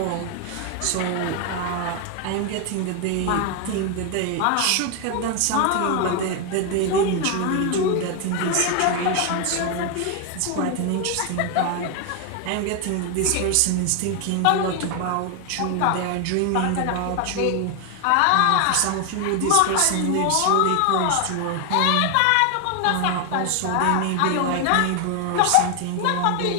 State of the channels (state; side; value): different; both; correlation 0.01